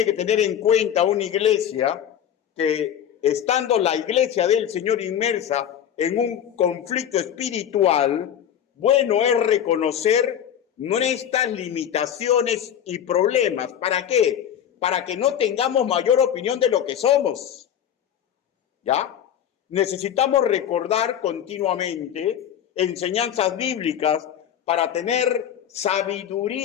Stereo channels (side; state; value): right; quieter; 9.6 dB